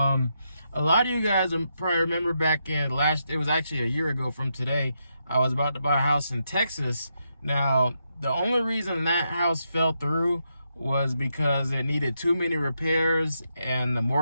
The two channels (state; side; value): inverted; both; correlation -0.82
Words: lot of you guys probably remember back in it was actually a year ago from today, I was about to buy a house in Texas. Now, the only reason that house fell through was because it needed too many repairs and the